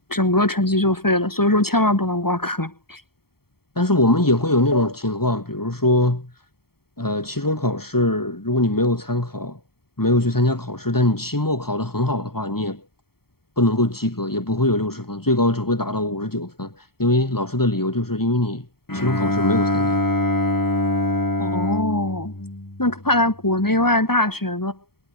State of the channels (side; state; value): right; late; 0.95 ms